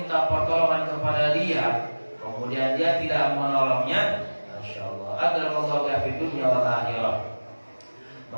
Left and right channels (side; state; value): both; inverted; correlation -1.00